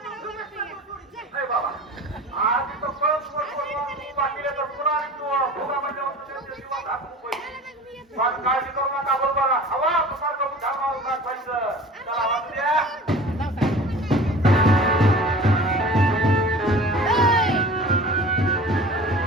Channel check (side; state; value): both; normal; correlation 0.41